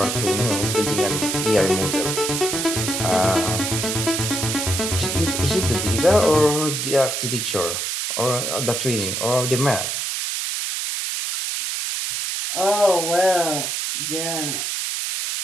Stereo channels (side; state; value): right; noise; hiss, 2 dB below the sound